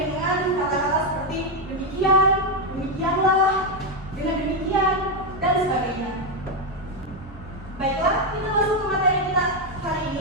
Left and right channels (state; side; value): normal; both; correlation 0.05